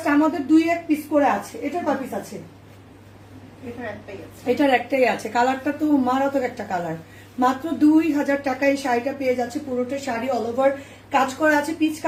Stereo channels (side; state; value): both; identical; correlation 1.00